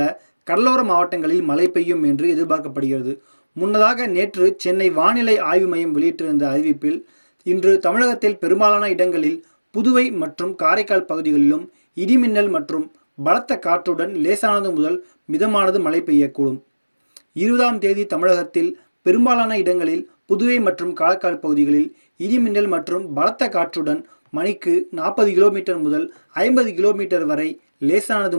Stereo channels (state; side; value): inverted; both; correlation -1.00